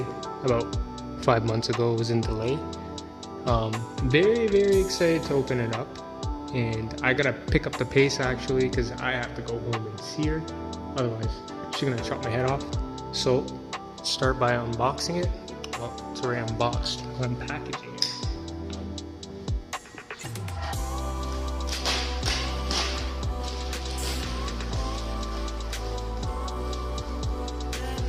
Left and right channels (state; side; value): identical; both; correlation 1.00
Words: about 5 months ago. It was in delay. Very excited to open it up, and I gotta pick up the pace actually because I have to go home and see her, otherwise she's gonna chop my head off. So start by unboxing it. Well, it's already unboxed. I'm packaging it.